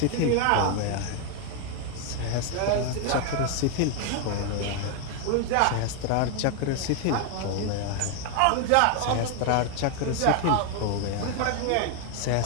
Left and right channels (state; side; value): different; both; correlation 0.01